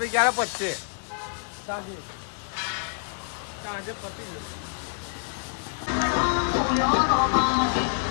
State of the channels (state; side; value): silent; right; 60 dB below the other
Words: ક્યારે પચશે સાંજે. સાંજે પતી જશે